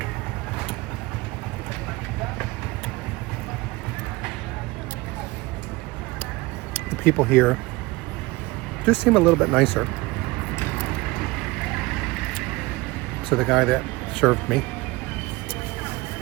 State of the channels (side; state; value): left; quieter; 22.0 dB